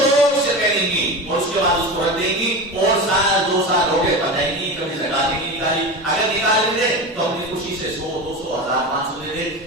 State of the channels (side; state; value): both; normal; correlation 0.26